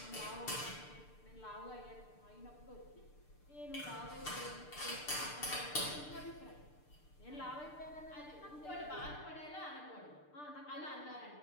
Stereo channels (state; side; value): late; right; 6.7 ms